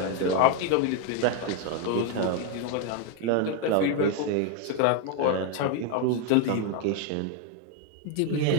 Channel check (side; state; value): both; different; correlation 0.01